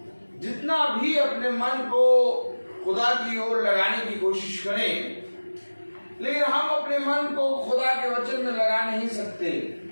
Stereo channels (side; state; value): both; inverted; correlation -1.00